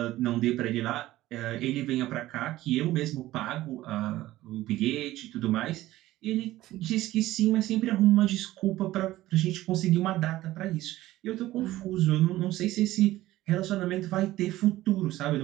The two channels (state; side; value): quieter; left; 16.0 dB